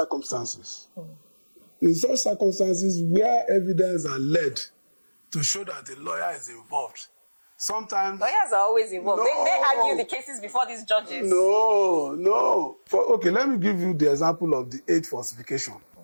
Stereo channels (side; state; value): both; inverted; correlation -1.00